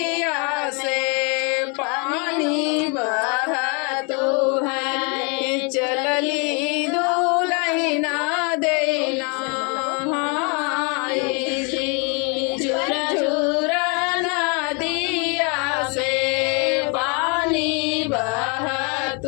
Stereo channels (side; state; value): right; quieter; 33.9 dB